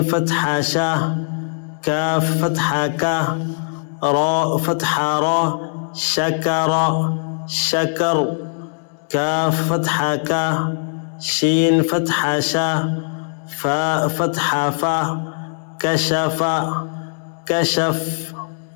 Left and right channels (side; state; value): right; silent; 66 dB below the other